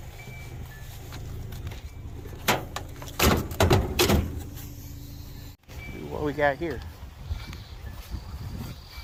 What we got here?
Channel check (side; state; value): both; identical; correlation 1.00